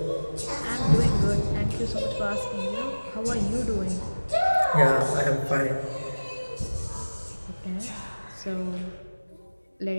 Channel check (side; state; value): both; inverted; correlation -1.00